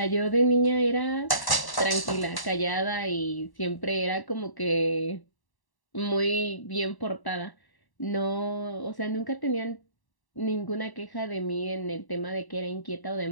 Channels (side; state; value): right; late; 1.1 ms